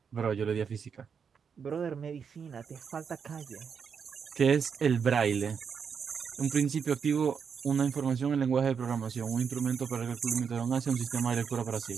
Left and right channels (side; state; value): left; quieter; 6.6 dB